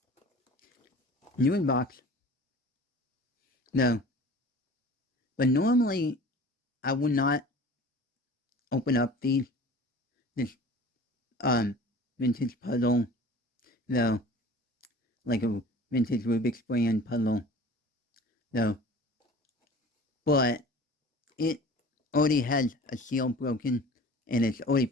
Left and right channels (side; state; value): both; normal; correlation 0.43